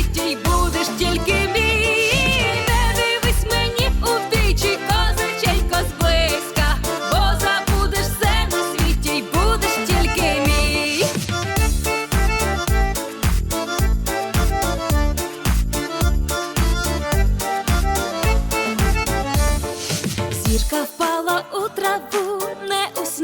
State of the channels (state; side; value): identical; both; correlation 1.00